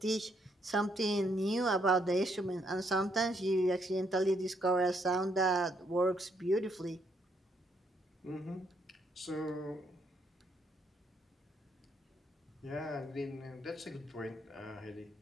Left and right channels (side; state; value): both; normal; correlation 0.73